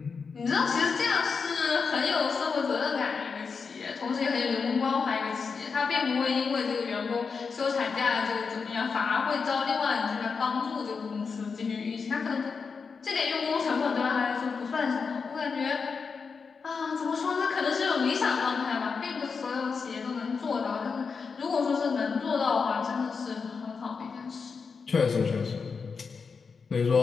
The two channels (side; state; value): right; quieter; 5.3 dB